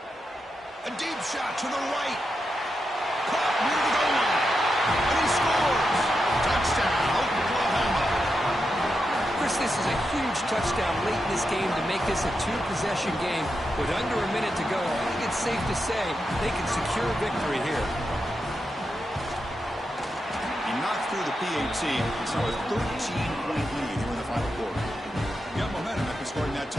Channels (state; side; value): normal; both; correlation 0.87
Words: A deep shot to the right. Caught near the goal line. And he scores. Touchdown, Oklahoma. Chris, this is a huge touchdown late in this game to make this a 2-possession game. With under a minute to go, I think it's safe to say they can secure a victory here. He knocked through the PAT. It's now a 13-point lead here in the final quarter. Got momentum after scoring that